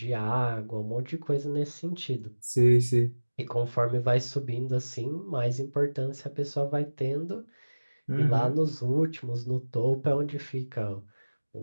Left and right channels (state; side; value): inverted; both; correlation -1.00